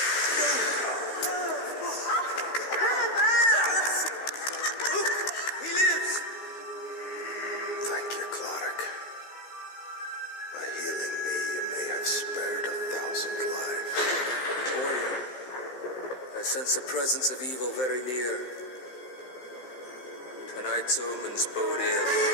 Look, he lives. Thank you, Clodagh. By healing me, you may have spared 1,000 lives. Warrior, as sense the presence of evil very near. Tonight's omens bode ill.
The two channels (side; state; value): right; late; 15 ms